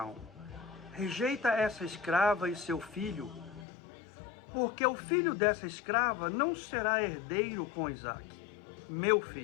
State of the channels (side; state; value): right; drops out; at 3.7 s